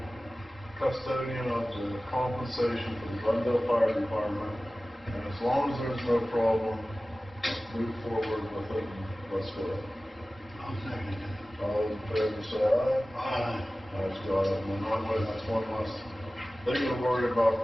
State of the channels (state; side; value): normal; both; correlation 0.96